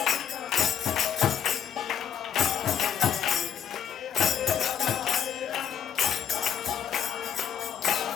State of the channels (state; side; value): quieter; right; 8.3 dB